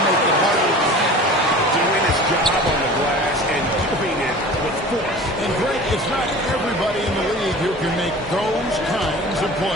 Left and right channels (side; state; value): both; normal; correlation 0.39